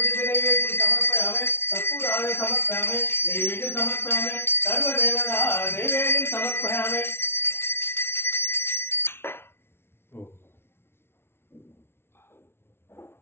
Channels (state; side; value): late; right; 0.12 ms